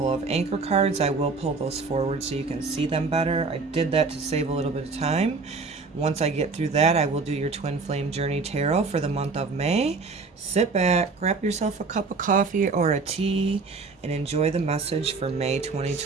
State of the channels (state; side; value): quieter; left; 4.3 dB